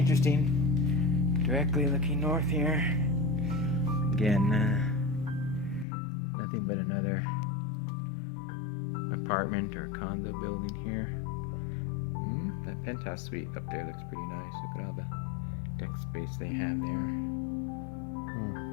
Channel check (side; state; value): right; drops out; at 5.9 s